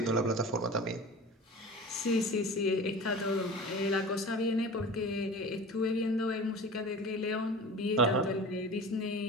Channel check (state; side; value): normal; both; correlation 0.36